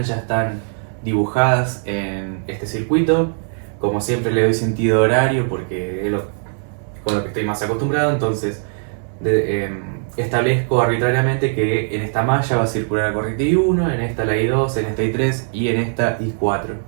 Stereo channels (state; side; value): silent; left; 62 dB below the other